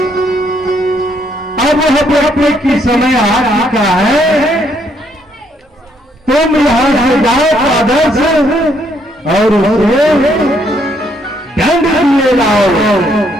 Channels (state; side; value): normal; both; correlation 0.71